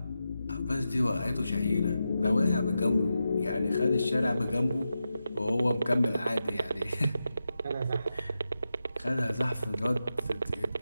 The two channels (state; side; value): inverted; both; correlation -0.89